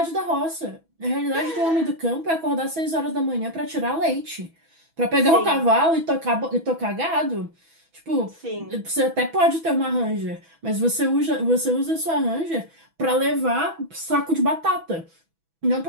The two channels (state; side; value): late; left; 6.1 ms